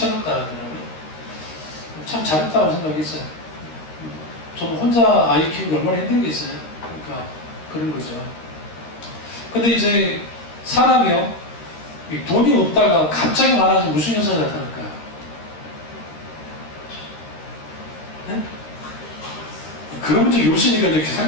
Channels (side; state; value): right; late; 13 ms